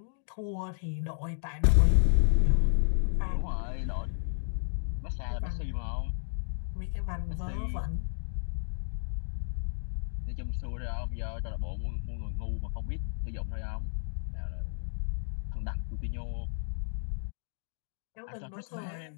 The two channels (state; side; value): silent; right; digital silence